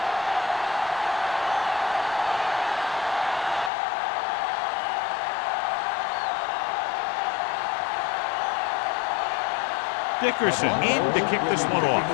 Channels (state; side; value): drops out; right; at 3.7 s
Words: Dickerson in to kick this one off.